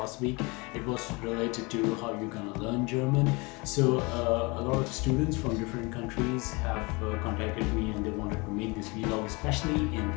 week. It was related to how you're gonna learn German. So a lot of students from different countries have contacted me and they wanted to make this vlog, especially in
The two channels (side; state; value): right; quieter; 27.2 dB